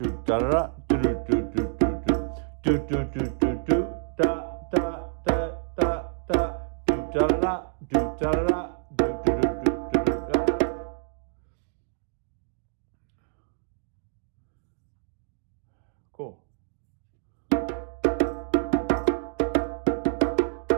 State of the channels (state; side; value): silent; left; digital silence